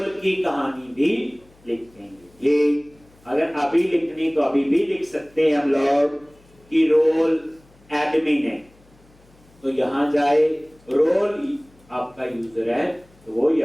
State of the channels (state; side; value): noise; left; hum, 29 dB below the sound